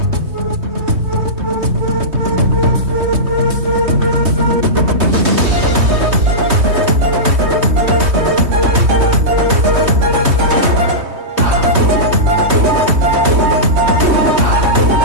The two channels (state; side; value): late; left; 3.2 ms